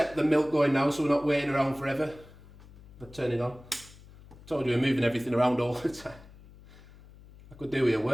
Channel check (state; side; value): noise; left; hum, 21 dB below the sound